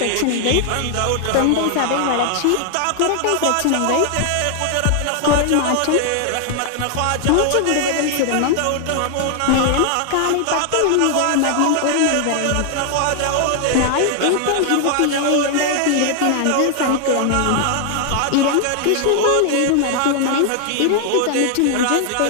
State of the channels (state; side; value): different; both; correlation 0.00